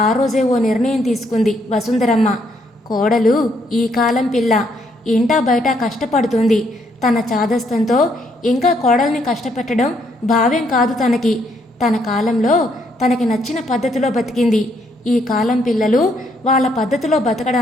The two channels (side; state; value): both; normal; correlation 0.72